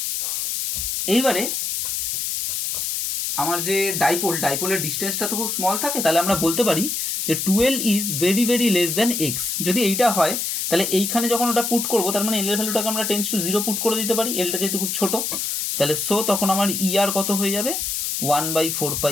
এইবারে আমার যে ডাইপোলের ডিস্টেন্সটা তো খুব স্মল থাকে, তাহলে আমরা বলতে পারি যে 2l is very very less than x. যদি এইটা হয় তাহলে এইখানে যখন ওটা পুট করবো, তার মানে এল এর ভ্যালুটাকে আমরা 10⁻0 পুট করে দিতে পারি, এলটা যেহেতু খুব ছোট। তাহলে সো তখন আমার ই আর কত হয়ে যাবে?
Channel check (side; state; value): left; noise; hiss, 1 dB below the sound